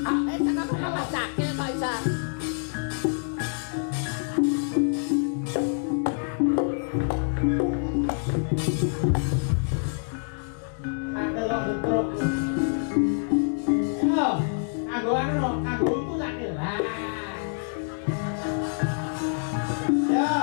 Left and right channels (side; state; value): right; silent; digital silence